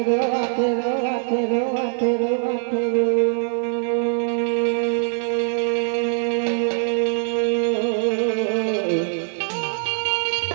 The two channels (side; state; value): left; silent; digital silence